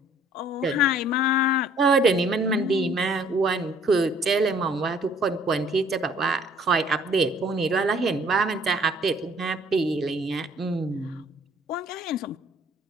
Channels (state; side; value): normal; both; correlation 0.58